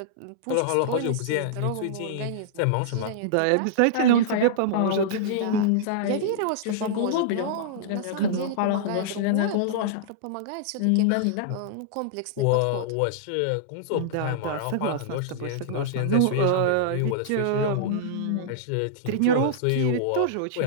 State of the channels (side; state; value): both; different; correlation -0.02